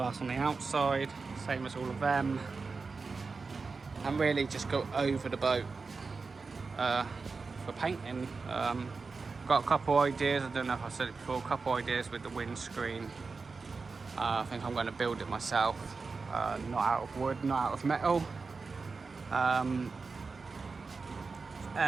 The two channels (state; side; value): quieter; left; 4.4 dB